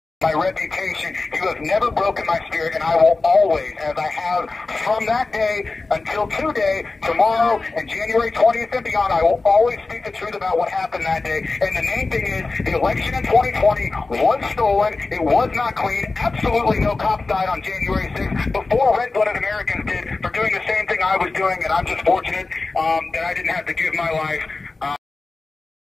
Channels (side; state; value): right; quieter; 3.6 dB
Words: my reputation, you have never broken my spirit, and I will always, as I have from that day until today, tomorrow, and January 20th and beyond, I will always speak the truth about what happened that day. And the main thing is, the election in 2020 was stolen. It was not clean. Absolutely no cops died on January 6th before red-blooded Americans did for doing the same thing I was doing, and I'm just fortunate that I didn't have to give my life.